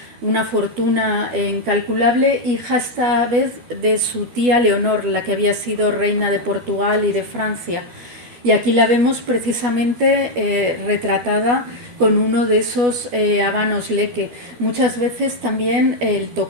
una fortuna incalculable, hija esta vez de su tía Leonor, la que había sido reina de Portugal y de Francia. Y aquí la vemos precisamente retratada con uno de esos habanos leque. Muchas veces también el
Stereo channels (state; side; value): late; left; 12 ms